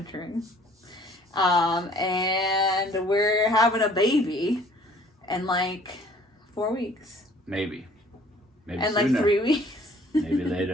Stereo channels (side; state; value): both; normal; correlation 0.55